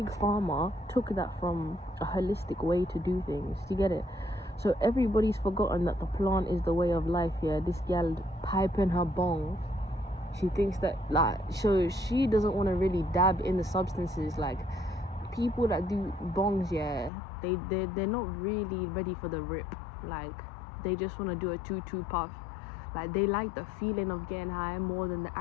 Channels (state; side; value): drops out; right; at 17.1 s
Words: Pharma took that from a holistic way to do things. You get it? So everybody's forgotten that the plant is the way of life. Yeah, this gal piping her bong, she thinks that, like, so she doesn't want to really dab in the substances. Like, people that do bongs, yeah, they're not really ready for the rip. Like, they just want to do a 2-2 puff. Like, they like the feeling of getting high more than the